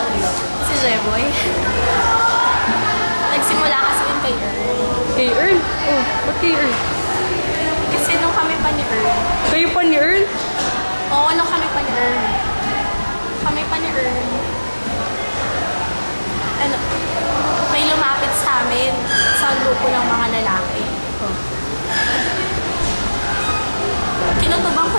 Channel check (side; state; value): both; inverted; correlation -1.00